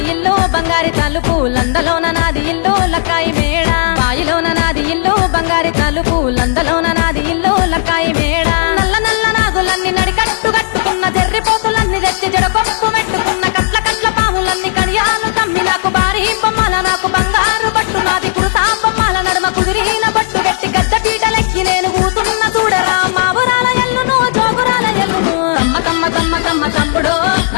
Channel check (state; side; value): silent; right; digital silence